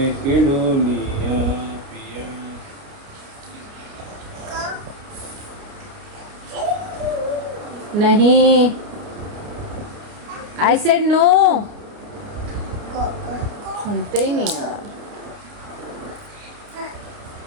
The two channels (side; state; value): left; late; 29 ms